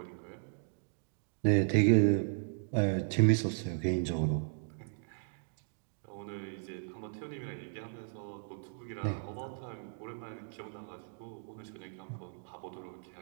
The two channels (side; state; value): left; silent; digital silence